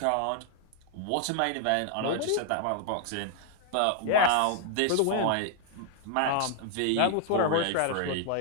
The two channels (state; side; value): different; both; correlation 0.00